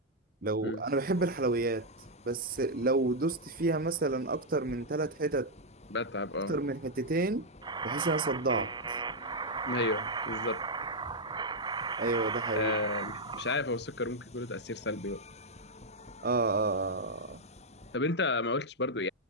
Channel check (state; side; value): normal; both; correlation -0.03